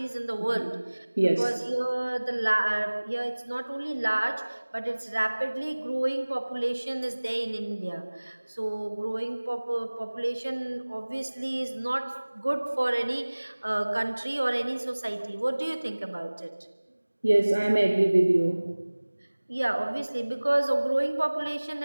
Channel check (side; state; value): both; inverted; correlation -1.00